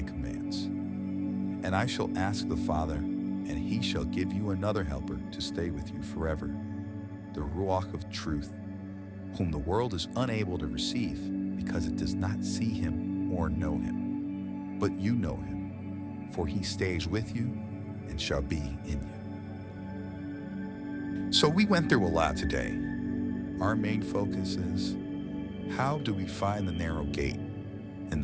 commands. And I shall ask the Father, and he shall give you another helper to stay with you forever, the Ruach of truth, whom the world is unable to receive because it does not see him or know him. But you know him, for he stays with you and shall be in you." So we went through a lot today. Our main focus is, how do we find the narrow gate? And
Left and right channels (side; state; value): both; identical; correlation 1.00